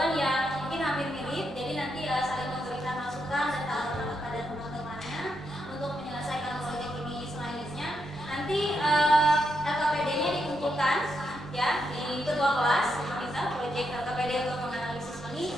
yang mungkin hampir mirip. Jadi nanti saling memberikan masukan dan tawaran kepada teman-temannya untuk menyelesaikan proyek ini selanjutnya. Nanti LKPD-nya dikumpulkan ya di ketua kelas. Kita proyek LKPD untuk menganalisis ini.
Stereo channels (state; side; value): normal; both; correlation 0.81